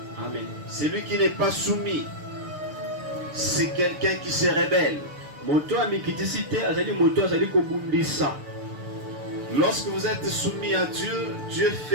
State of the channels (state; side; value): late; left; 6.8 ms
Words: Amen. Celui qui n'est pas soumis, c'est quelqu'un qui se rebelle. Lorsque vous êtes soumis à Dieu, Dieu